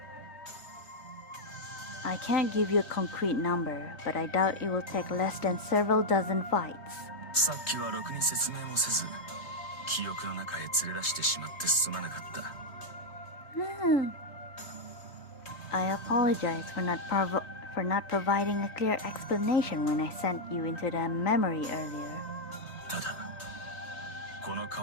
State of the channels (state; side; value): late; right; 3.5 ms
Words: I can't give you a concrete number, but I doubt it will take less than several dozen fights. さっきはろくに説明もせず、記憶の中へ連れ出してしまってすまなかった。 I apologize for not providing a clear explanation when I sent you into the memory earlier. ただ、この